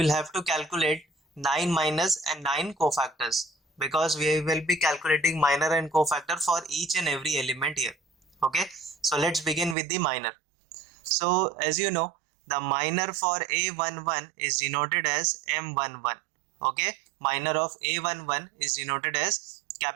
have to calculate 9 minus and 9 cofactors, because we will be calculating minor and cofactor for each and every element here. Okay, so let's begin with the minor. So as you know, the minor for A11 is denoted as M11. Okay, minor of A11 is denoted as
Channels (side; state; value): left; drops out; at 9.8 s